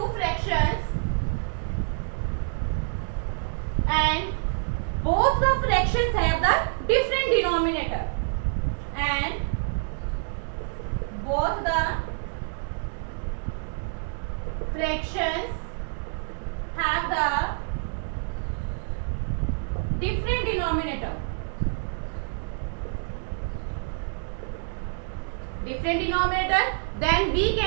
fractions and both the fractions have the different denominator and both the fractions have the different denominator. Then we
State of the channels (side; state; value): left; silent; 59 dB below the other